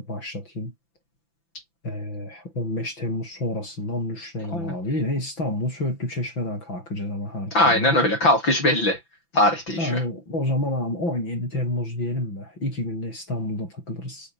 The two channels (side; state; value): right; late; 5.9 ms